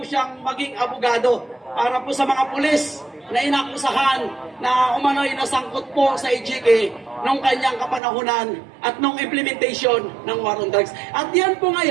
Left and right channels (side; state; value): left; drops out; at 8.0 s